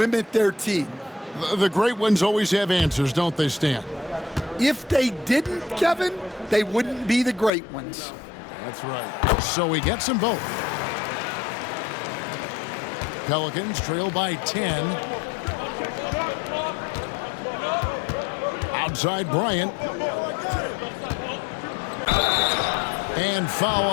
their team. The great ones always have answers, don't they, Stan? If they didn't, Kevin, they wouldn't be the great ones. That's right. So he gets them both. Pelicans trail by 10. Outside Bryant. And foul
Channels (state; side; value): drops out; right; at 7.5 s